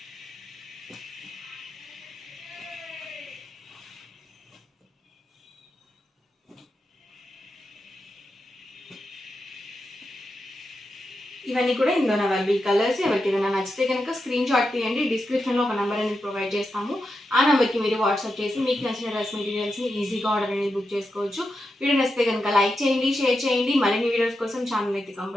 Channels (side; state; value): both; normal; correlation 0.88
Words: ఇవన్నీ కూడా ఇందులో అవైలబుల్ కలర్స్. ఎవరికి ఏదైనా నచ్చితే కనుక స్క్రీన్ షాట్ తీయండి. డిస్క్రిప్షన్లో ఒక నెంబర్ అనేది ప్రొవైడ్ చేస్తాము. ఆ నెంబర్కి మీరు వాట్సాప్ చేసి మీకు నచ్చిన డ్రెస్ మెటీరియల్స్ని ఈజీగా ఆర్డర్ అనేది బుక్ చేసుకోవచ్చు. వీడియో నచ్చితే కనుక లైక్ చేయండి, షేర్ చేయండి. మరిన్ని వీడియోస్ కోసం ఛానల్ అయితే